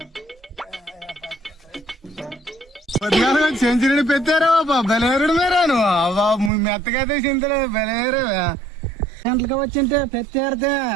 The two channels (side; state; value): left; drops out; at 6.5 s